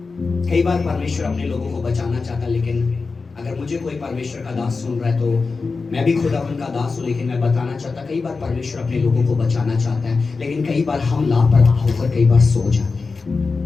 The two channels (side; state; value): right; quieter; 4.3 dB